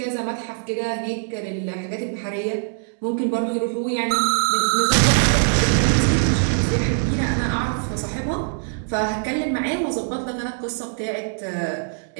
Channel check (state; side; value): silent; left; 64 dB below the other